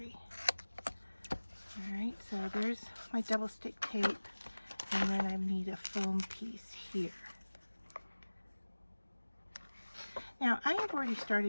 All right, so there's my double stick tape, and then I need a foam piece here. Now, I have already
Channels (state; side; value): inverted; both; correlation -1.00